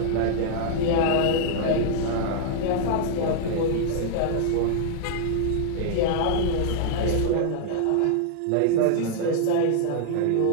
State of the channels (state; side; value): different; both; correlation -0.01